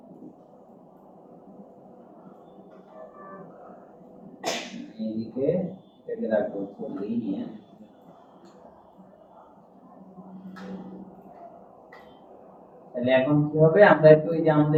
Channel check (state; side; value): identical; both; correlation 1.00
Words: এদিকে এটাকে রাখবো লিনিয়ার। তাহলে এখন কি হবে, আমরা একটু এই যে